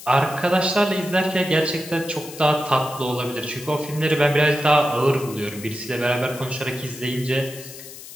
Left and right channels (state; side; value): noise; left; hiss, 15 dB below the sound